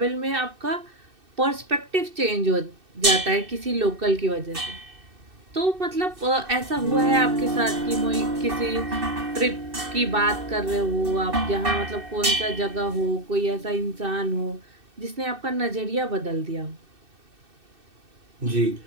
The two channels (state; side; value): late; left; 2.6 ms